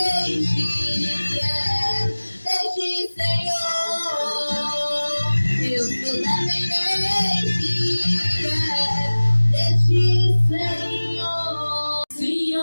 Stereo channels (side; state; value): both; inverted; correlation -1.00